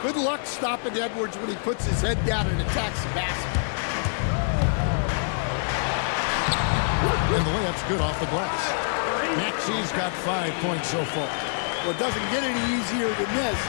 good luck stopping Edwards when he puts his head down and attacks the basket. And the layup's good off the glass. Maxey's got 5 points so far. Well, it doesn't get any easier than this.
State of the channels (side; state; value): right; silent; digital silence